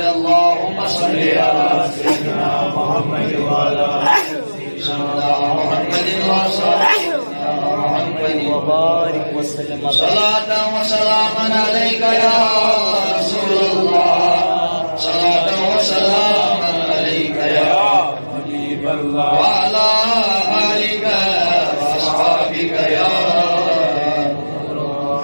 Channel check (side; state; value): both; inverted; correlation -1.00